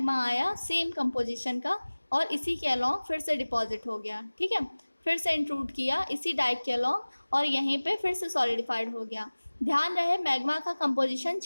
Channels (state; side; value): inverted; both; correlation -1.00